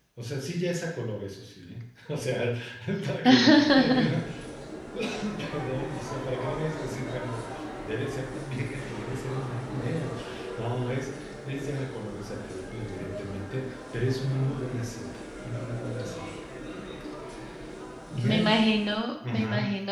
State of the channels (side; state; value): both; identical; correlation 1.00